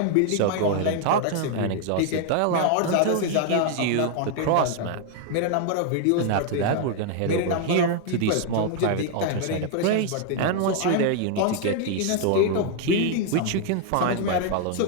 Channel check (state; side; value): different; both; correlation 0.00